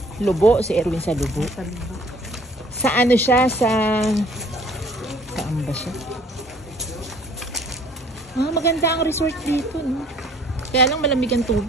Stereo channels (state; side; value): normal; both; correlation 0.56